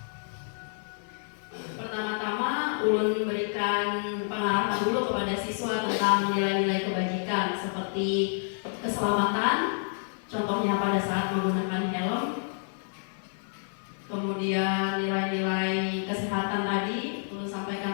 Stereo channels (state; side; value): silent; right; digital silence